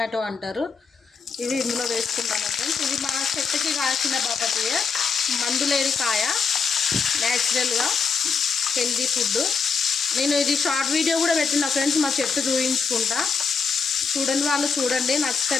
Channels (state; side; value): quieter; right; 5.3 dB